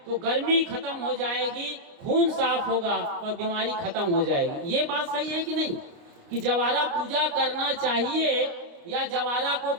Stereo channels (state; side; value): late; left; 29 ms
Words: तो गर्मी खत्म हो जाएगी, खून साफ होगा और बीमारी खत्म हो जाएगी। ये बात सही है कि नहीं, कि जवारा पूजा करना चाहिए या जवारा को